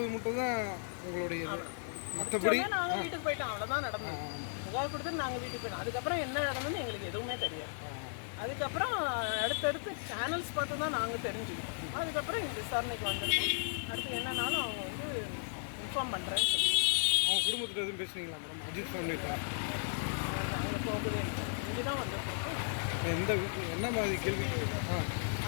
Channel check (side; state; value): right; silent; digital silence